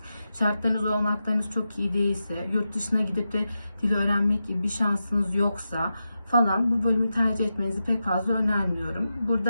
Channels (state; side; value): inverted; both; correlation -0.90